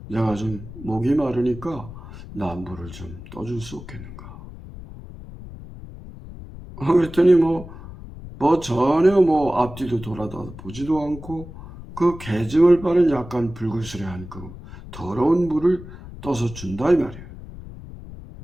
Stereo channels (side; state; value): left; noise; rumble, 14 dB below the sound